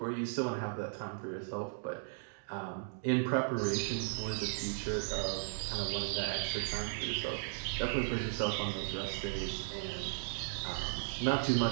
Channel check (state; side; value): silent; left; digital silence